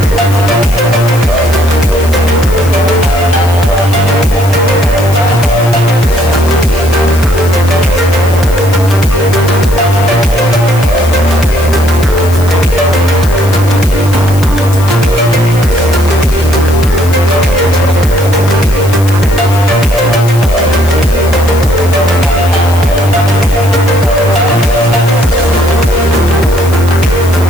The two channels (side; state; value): left; noise; hiss, 16 dB below the sound